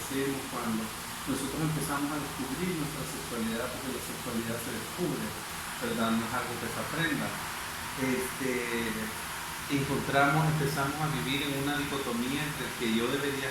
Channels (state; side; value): identical; both; correlation 1.00